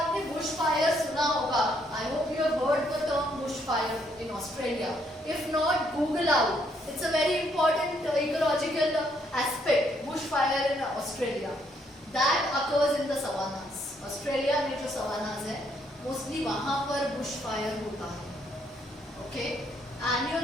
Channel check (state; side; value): normal; both; correlation 0.71